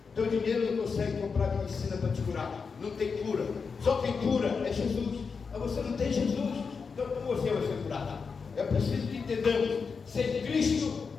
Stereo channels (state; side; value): quieter; right; 5.3 dB